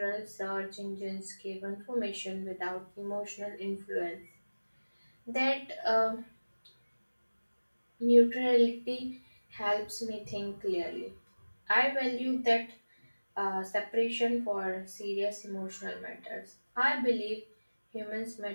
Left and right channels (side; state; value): both; inverted; correlation -1.00